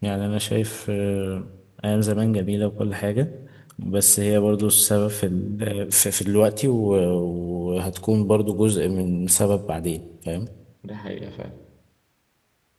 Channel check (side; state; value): both; identical; correlation 1.00